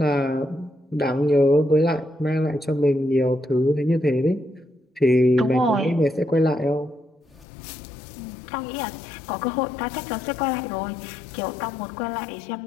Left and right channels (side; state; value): right; drops out; at 7.5 s